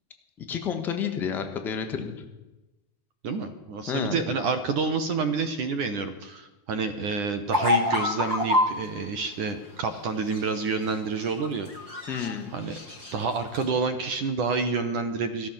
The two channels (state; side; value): late; left; 5.6 ms